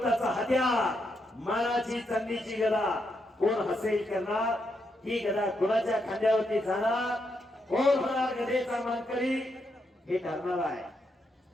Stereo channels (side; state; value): both; normal; correlation 0.81